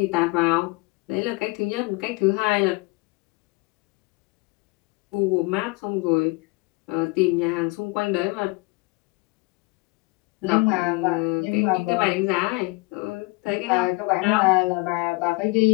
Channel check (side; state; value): right; quieter; 24.8 dB